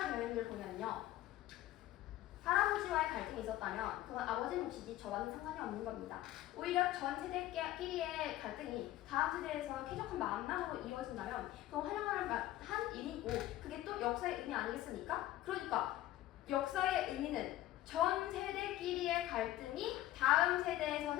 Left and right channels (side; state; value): right; quieter; 14.9 dB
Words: 되어 있는 걸 보면요. 할아버지와의 갈등이 있었다면 그건 아버지 몫이지 저와는 상관이 없는 겁니다. 오히려 전 세대끼리의 갈등이 다음 세대에서 쾌적한 만남으로 이어진다면 그건 환영할 만한 일이고 그게 또 역사의 의미 아니겠습니까? 그러니까 역사의 의미는 전 세대끼리의 갈등이 다음